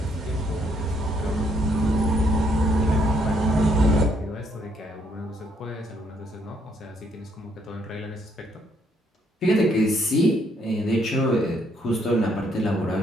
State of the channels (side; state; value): both; normal; correlation 0.71